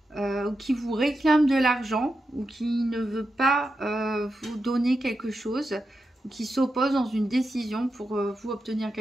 ou qui vous réclame de l'argent, ou qui ne veut pas vous donner quelque chose, ou qui s'oppose dans une décision pour vous obtenir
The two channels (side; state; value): both; normal; correlation 0.88